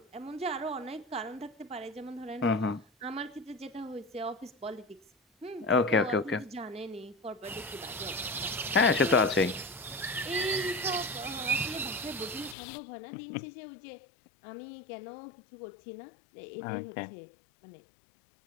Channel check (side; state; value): right; drops out; at 12.6 s